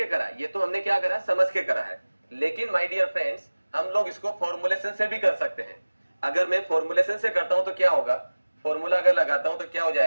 करा, ये तो हमने क्या करा? समझ के करा है। लेकिन माय डियर फ्रेंड्स, हम लोग इसको फॉर्मुलेशन से भी कर सकते हैं। अगर मैं फॉर्मुलेशन से करता हूं तो क्या होगा? फॉर्मूला अगर लगाता हूं तो क्या हो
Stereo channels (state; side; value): inverted; both; correlation -1.00